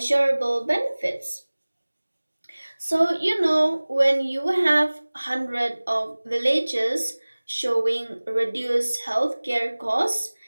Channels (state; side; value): inverted; both; correlation -1.00